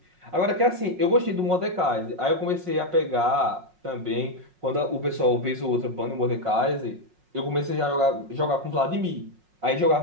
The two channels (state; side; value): late; left; 5.5 ms